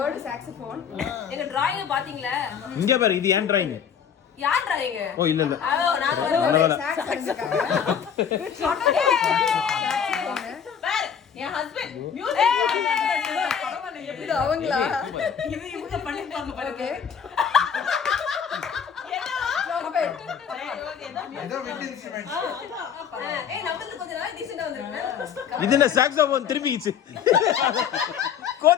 saxophone. எங்க drawing பாத்தீங்களா? இங்க பாரு இது ஏன் drawing? யார் drawing? ஓ இல்ல இல்ல. நான் ஒரு sax அடிச்சுக்காங்க. பாரு என் ஹஸ்பண்ட் மியூசிக் பரவாயில்லை இது அவங்களா? இது இவங்க பண்ணிருப்பாங்க பாருங்க. இது என்ன சாக்ஸோபோன் திரும்பிச்சு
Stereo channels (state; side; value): quieter; right; 7.8 dB